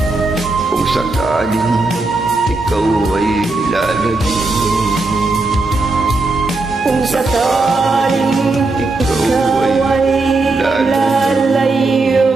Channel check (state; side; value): quieter; left; 3.3 dB